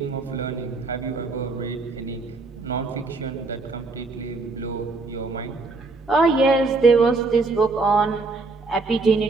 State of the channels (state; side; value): quieter; left; 3.7 dB